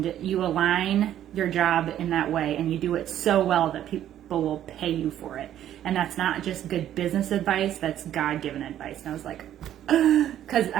you align your job in that way, and you do it so well that people will pay you for it. And that's not just good business advice, that's God-given advice. And I was like, because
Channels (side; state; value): left; quieter; 11.4 dB